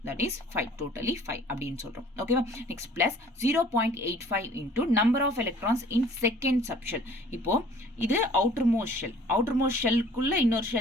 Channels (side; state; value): both; normal; correlation 0.53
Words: that is 5, totally 5 அப்படின்னு சொல்றோம். ஓகேவா? Next plus 0.85 into number of electrons in second subshell. இப்போ இது outermost shellக்குள்ள இன்னொரு